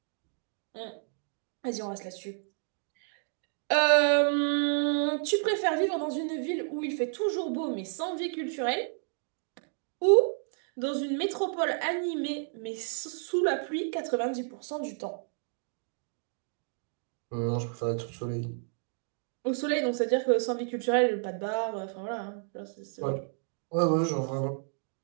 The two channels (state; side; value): silent; left; 57 dB below the other